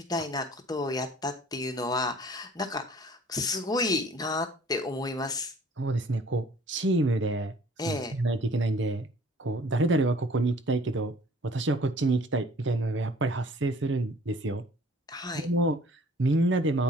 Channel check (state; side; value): normal; both; correlation 0.52